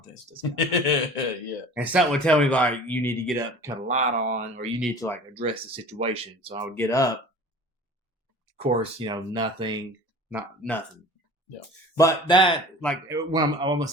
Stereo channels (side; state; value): both; normal; correlation 0.42